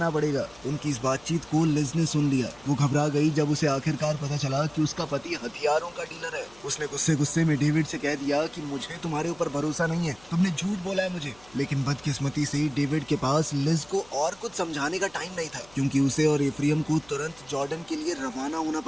पड़ेगा। उनकी इस बातचीत को लिज ने सुन लिया। वो घबरा गई जब उसे आखिरकार पता चला कि उसका पति हथियारों का डीलर है। उसने गुस्से में डेविड से कह दिया कि मुझे तुम्हारे ऊपर भरोसा नहीं है, तुमने झूठ बोला है मुझे। लेकिन बदकिस्मती से डेविड के पास लिज को और कुछ समझाने का टाइम नहीं था, क्योंकि उसे और एफ्रियम को तुरंत जॉर्डन के लिए रवाना होना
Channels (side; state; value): left; noise; hum, 26 dB below the sound